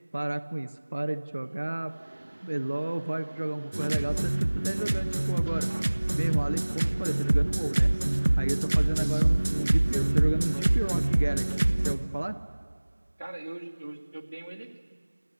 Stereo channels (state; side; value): inverted; both; correlation -1.00